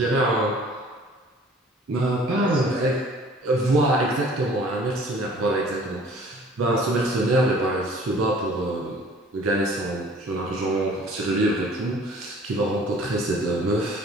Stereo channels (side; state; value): both; normal; correlation 0.51